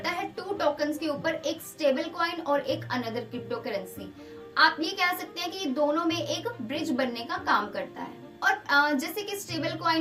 है टू टोकन्स के ऊपर, एक स्टेबल कॉइन और एक अनदर क्रिप्टो करेंसी। आप ये कह सकते हैं कि दोनों में एक ब्रिज बनने का काम करता है। और जैसे कि स्टेबल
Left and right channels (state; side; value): identical; both; correlation 1.00